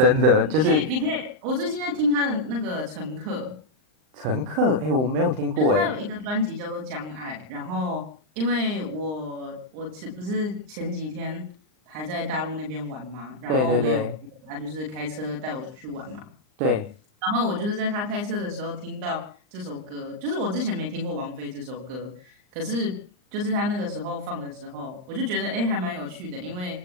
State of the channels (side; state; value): left; late; 39 ms